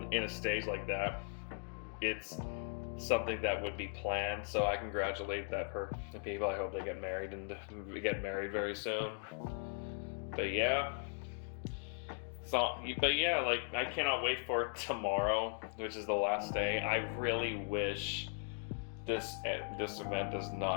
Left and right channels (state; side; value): silent; right; 52 dB below the other